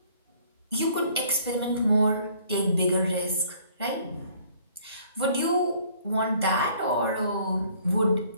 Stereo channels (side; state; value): both; inverted; correlation -0.59